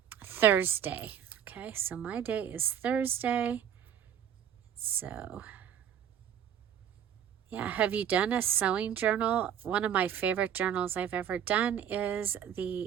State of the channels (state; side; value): quieter; left; 9.2 dB